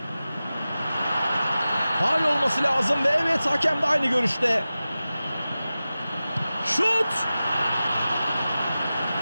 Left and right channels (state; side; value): inverted; both; correlation -0.95